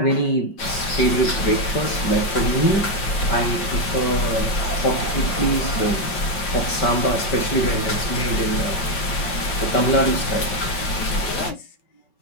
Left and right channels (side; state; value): right; late; 5.6 ms